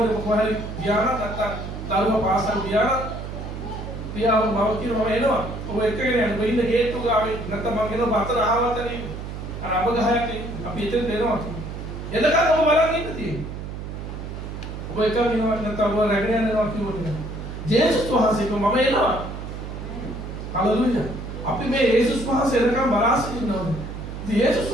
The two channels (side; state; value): right; noise; hum, 8 dB below the sound